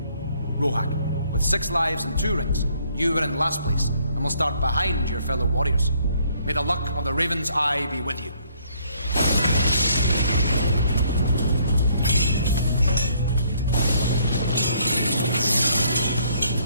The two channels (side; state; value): both; inverted; correlation -0.66